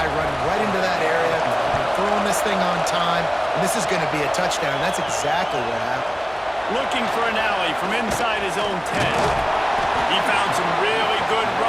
running right into that area. I'm throwing this thing on time, and this is going to be a touchdown. That's exactly what happened. Looking for an alley from inside his own 10. He found some really good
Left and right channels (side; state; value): both; identical; correlation 1.00